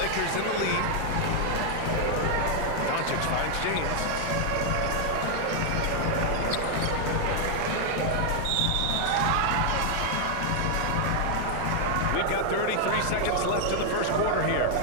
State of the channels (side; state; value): both; different; correlation 0.00